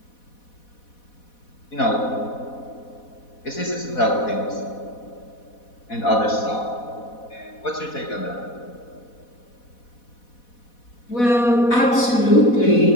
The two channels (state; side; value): late; right; 4.1 ms